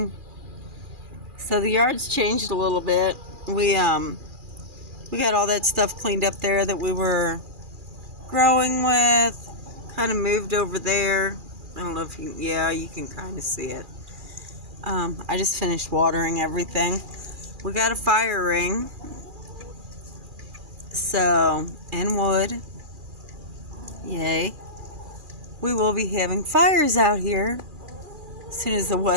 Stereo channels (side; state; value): left; late; 2.4 ms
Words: So the yard's changed a little bit. We got all that stuff cleaned up there that we were growing with. Kind of moved over there. I don't know if you can kind of see it. I just finished watering everything. We got a fire ring. So, and wood. Yay. We will be having fires out here as soon as the